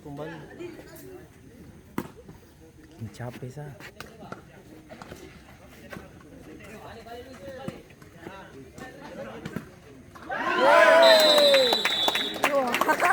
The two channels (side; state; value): both; identical; correlation 1.00